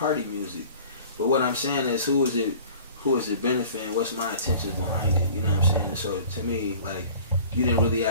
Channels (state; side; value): inverted; both; correlation -0.45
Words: music. But what I'm saying is, who is it benefiting? What's my intentions behind it? You know what I'm saying? So to me, like, you didn't really